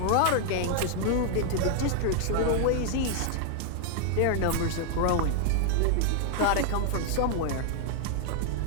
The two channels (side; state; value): both; different; correlation 0.00